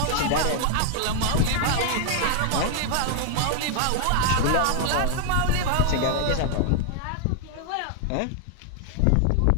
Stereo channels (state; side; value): different; both; correlation 0.00